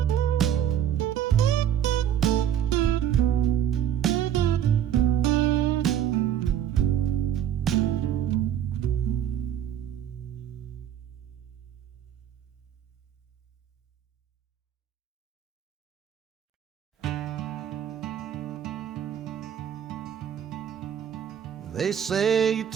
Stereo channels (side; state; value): left; quieter; 9.9 dB